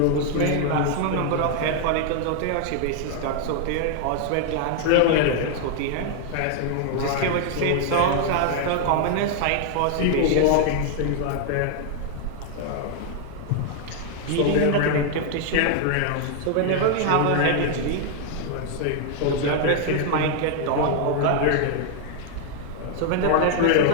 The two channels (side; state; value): both; different; correlation 0.00